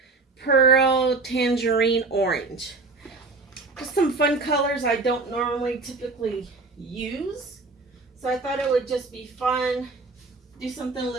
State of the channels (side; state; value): left; quieter; 3.7 dB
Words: Pearl Tangerine Orange. Just some fun colors I don't normally typically use, so I thought it would just be fun, do something a